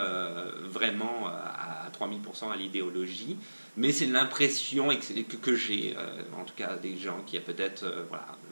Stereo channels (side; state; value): both; inverted; correlation -1.00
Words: vraiment à 3000% à l'idéologie. Mais c'est l'impression que j'ai, en tout cas des gens qui a peut-être, voilà,